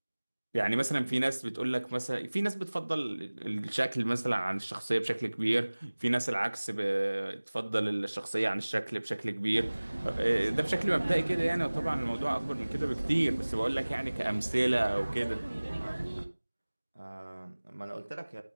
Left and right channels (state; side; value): inverted; both; correlation -1.00